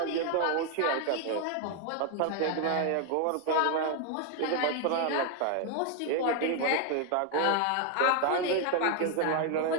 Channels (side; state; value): both; different; correlation 0.01